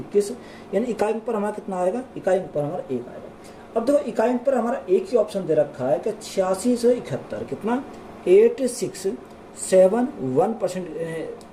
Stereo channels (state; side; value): identical; both; correlation 1.00